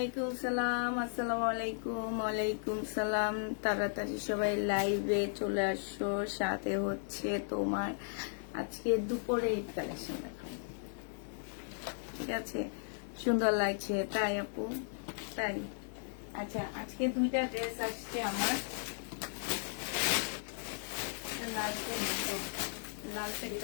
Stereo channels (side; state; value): right; silent; 54 dB below the other